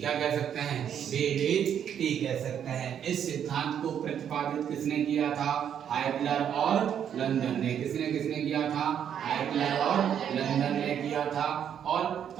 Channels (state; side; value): quieter; left; 8.9 dB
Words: कह सकते हैं? बीवीटी कह सकते हैं। इस सिद्धांत को प्रतिपादित किसने किया था? हाइटलर और लंदन ने। किसने किया था? हाइटलर और लंदन ने किया था। और